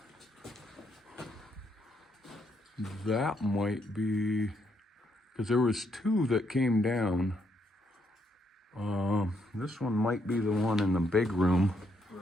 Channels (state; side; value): normal; both; correlation 0.75